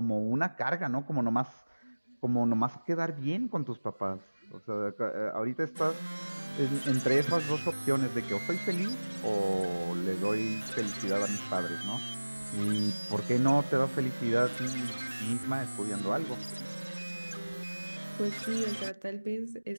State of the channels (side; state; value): both; inverted; correlation -1.00